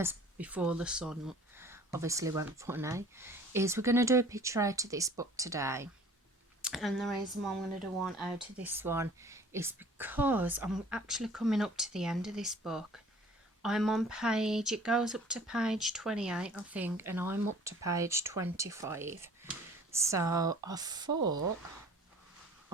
before the sun obviously went funny, is we're going to do a picture out of this book today. And the reason why I'm going to do one out of this one is because I'm actually coming up to the end of this book. I'm on page, it goes up to page 28 I think, and I'm up to page 25. So I thought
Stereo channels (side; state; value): both; normal; correlation 0.50